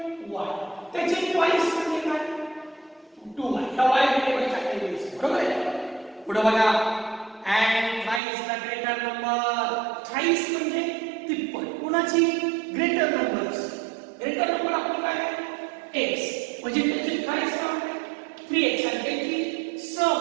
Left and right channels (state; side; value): drops out; left; at 8.2 s